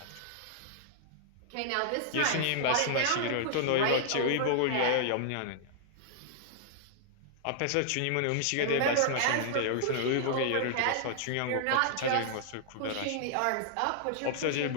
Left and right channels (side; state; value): both; different; correlation -0.01